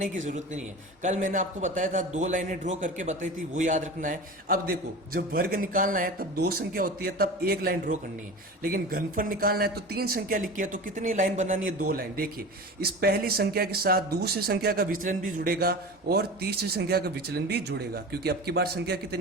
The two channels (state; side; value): normal; both; correlation 0.32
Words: की जरूरत नहीं है। कल मैंने आपको बताया था 2 लाइनें ड्रॉ करके बताई थी, वो याद रखना है। अब देखो, जब वर्ग निकालना है तब 2 संख्या होती है तब 1 लाइन ड्रॉ करनी है, लेकिन घनफल निकालना है तो 3 संख्या लिखी है तो कितनी लाइन बनानी है, 2 लाइन। देखिए, इस पहली संख्या के साथ दूसरी संख्या का विचलन भी जुड़ेगा और तीसरी संख्या का विचलन भी जुड़ेगा, क्योंकि अब की बार संख्या